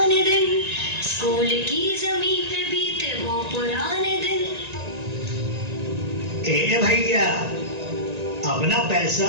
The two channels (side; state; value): left; late; 1.9 ms